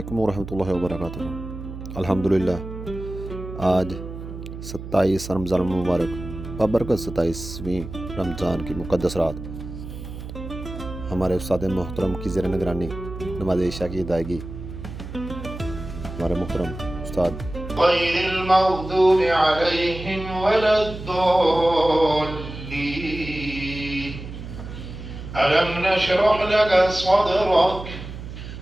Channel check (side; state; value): right; noise; hum, 10 dB below the sound